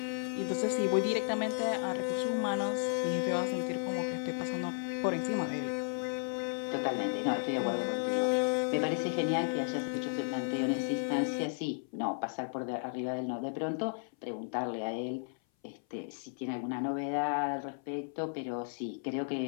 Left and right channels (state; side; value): silent; right; 55 dB below the other